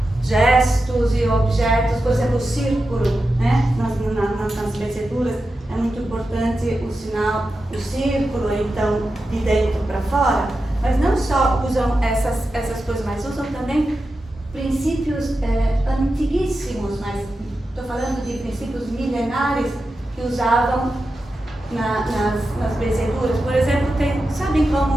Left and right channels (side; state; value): both; normal; correlation 0.91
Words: gestos e objetos, por exemplo, o círculo, né? Nas benzeduras é muito importante o sinal, o círculo, então de dentro para fora, mas não só usam essas coisas, mas usam também princípios antiguíssimos, mas estou falando de princípios milenares que usavam nas benzeduras. Por exemplo, sabem